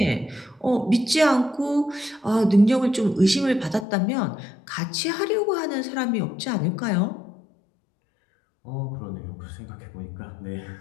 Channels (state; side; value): drops out; right; at 3.9 s